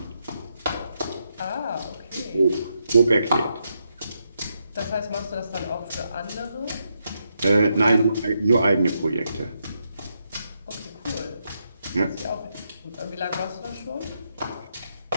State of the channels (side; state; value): both; inverted; correlation -0.81